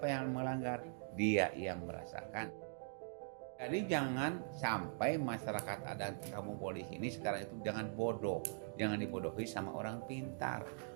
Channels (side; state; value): left; silent; digital silence